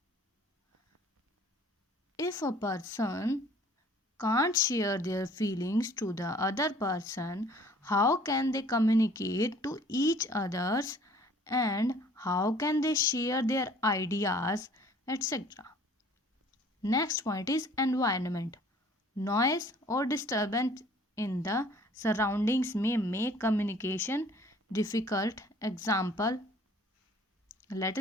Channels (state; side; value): normal; both; correlation 0.54